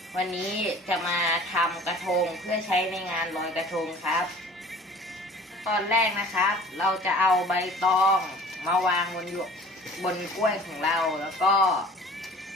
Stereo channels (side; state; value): both; normal; correlation 0.47